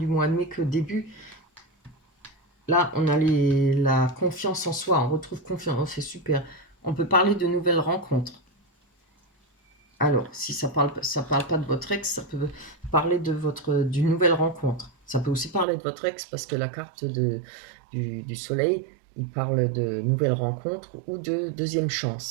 mois de mai que début. Là, on a la confiance en soi, on retrouve confiance, oh, c'est super. On peut parler de nouvelles rencontres. Alors, si ça parle pas de votre ex, ça peut parler d'une nouvelle rencontre. Ça peut aussi parler de votre ex parce que la carte du soleil, il parle de nouvelles rencontres ou de deuxième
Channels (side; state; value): left; drops out; at 15.7 s